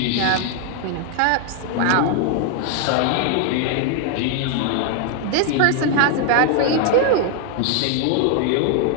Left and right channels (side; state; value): both; different; correlation 0.00